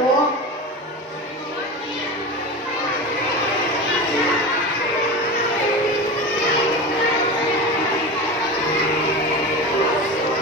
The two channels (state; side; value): normal; both; correlation 0.27